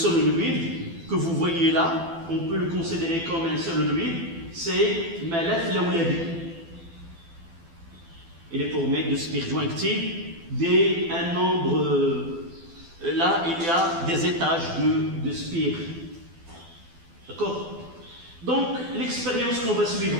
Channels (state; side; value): late; left; 12 ms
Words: que vous voyez là, on peut le considérer comme un solenoïde, c'est ملف لولبي. Il est formé de spires jointives d'un nombre. Là, il y a des étages de spires. D'accord? Donc, l'expérience qu'on va suivre